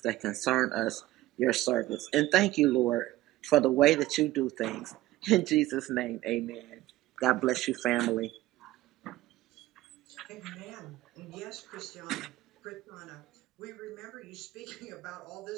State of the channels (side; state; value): left; quieter; 16.5 dB